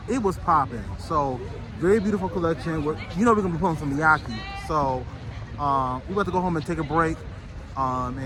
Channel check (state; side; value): identical; both; correlation 1.00